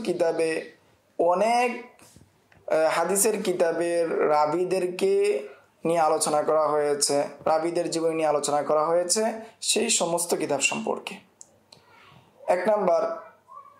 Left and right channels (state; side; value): identical; both; correlation 1.00